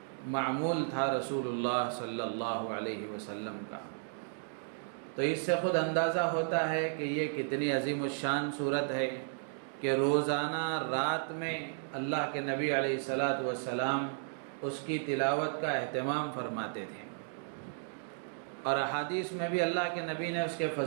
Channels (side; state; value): left; silent; digital silence